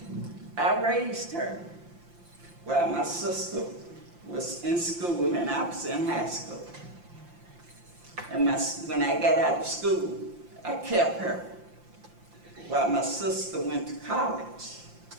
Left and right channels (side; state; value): left; late; 5.8 ms